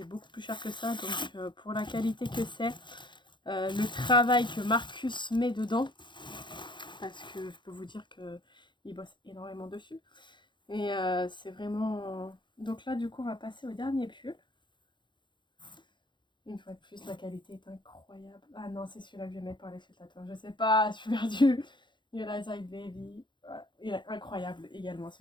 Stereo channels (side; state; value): right; late; 0.23 ms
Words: beaucoup plus cher que ça. Donc pour la qualité que c'est, le travail que Marcus met dedans, parce que je peux vous dire qu'il bosse énormément dessus. Et c'est vraiment... Donc là du coup on va passer au dernier pull. Une fois de plus, la qualité est incroyable. Ah non, c'est celui-là que je vais mettre pour aller chez le tatoueur. Je sais pas, je suis perdue. You like that baby. Il est incroyable également